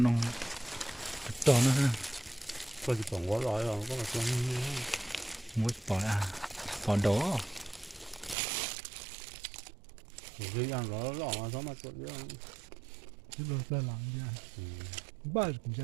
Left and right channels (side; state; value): left; drops out; at 8.3 s